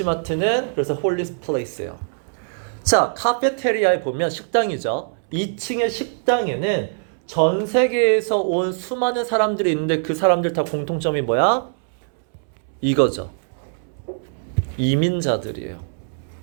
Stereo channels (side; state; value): left; silent; 64 dB below the other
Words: 그래서 홀리 플레이스예요. 자, 카페테리아에 보면 식당이죠. 2층의 식당에는 전 세계에서 온 수많은 사람들이 있는데 그 사람들 다 공통점이 뭐야? 이거죠. 이민자들이에요.